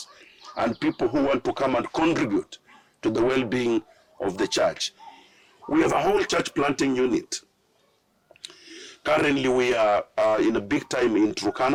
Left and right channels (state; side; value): identical; both; correlation 1.00